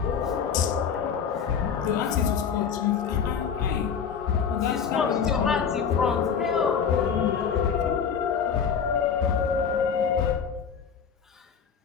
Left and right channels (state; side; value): quieter; right; 7.0 dB